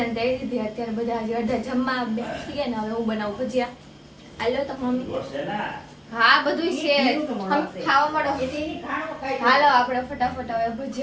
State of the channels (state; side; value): identical; both; correlation 1.00